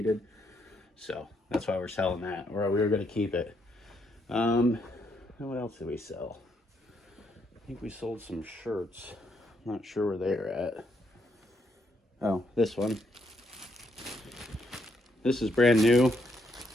So that's why we're selling that, or we were gonna keep it. And what else did we sell? I think we sold some shirts. I'm not sure where they're at. Oh, this one. This is brand new.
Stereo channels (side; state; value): both; normal; correlation 0.75